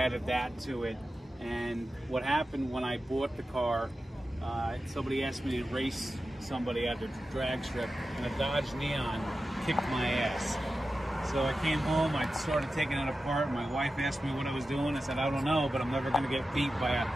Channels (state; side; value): normal; both; correlation 0.93